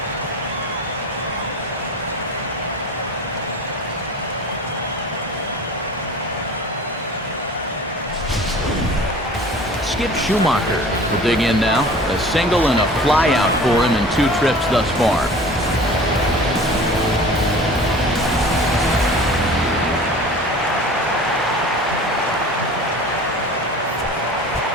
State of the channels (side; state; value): both; normal; correlation 0.42